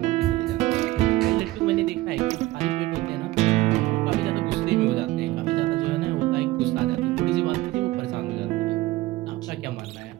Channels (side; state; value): left; quieter; 17.9 dB